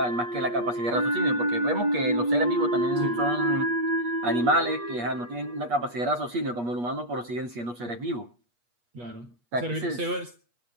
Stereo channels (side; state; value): left; late; 8.4 ms